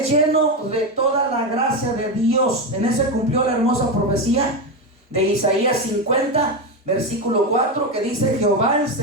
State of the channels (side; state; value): both; normal; correlation 0.13